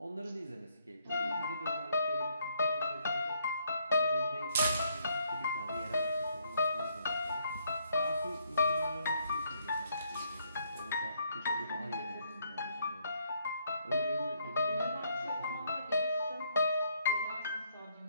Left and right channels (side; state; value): both; inverted; correlation -0.70